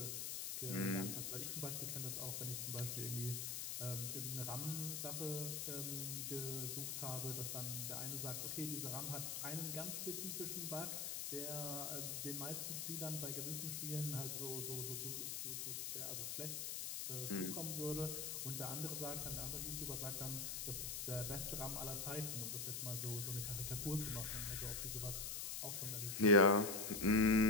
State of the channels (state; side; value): noise; left; hiss, 2 dB below the sound